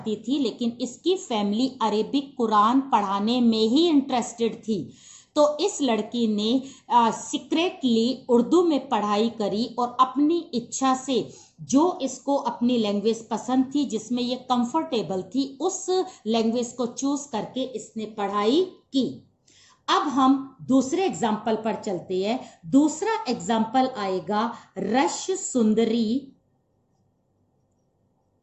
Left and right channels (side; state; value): both; identical; correlation 1.00